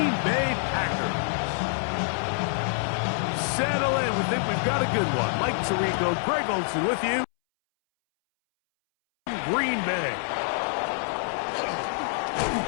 Bay Packers. Settle in. We think we've got a good one. Mike Tirico, Greg Olson with you. Green Bay.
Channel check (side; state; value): right; silent; 61 dB below the other